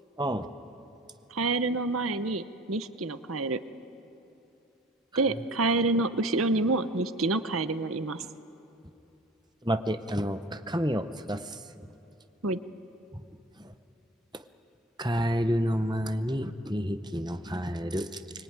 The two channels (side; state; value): both; normal; correlation 0.48